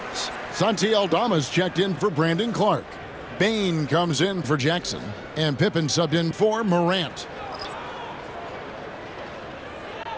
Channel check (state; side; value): identical; both; correlation 1.00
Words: Santi Aldama's checked in for Brandon Clark. Bane comes in for Jackson. And Pippen subbed in for Morant.